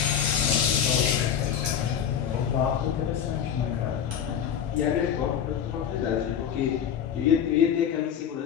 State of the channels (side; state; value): right; quieter; 8.6 dB